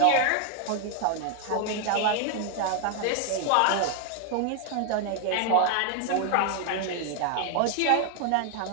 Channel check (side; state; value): both; different; correlation 0.00